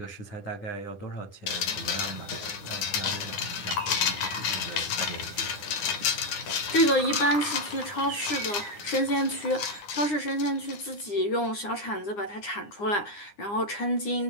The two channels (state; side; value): late; right; 9.8 ms